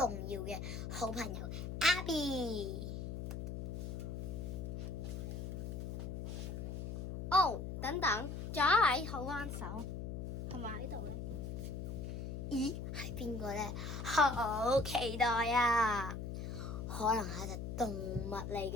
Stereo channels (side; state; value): left; noise; hum, 5 dB below the sound